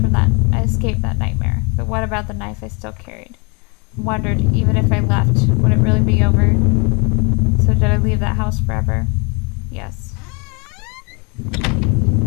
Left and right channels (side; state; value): right; quieter; 31.8 dB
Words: that nightmare. But what about the knife I still carried? I wondered, even if I left, would it really be over? So did I leave that house forever? Yes.